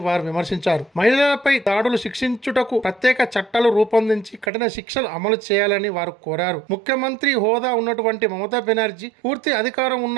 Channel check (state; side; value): drops out; left; at 4.5 s